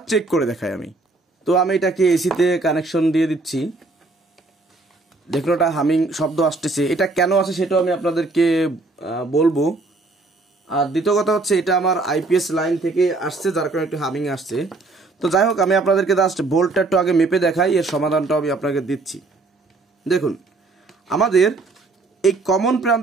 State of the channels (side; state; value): left; quieter; 3.4 dB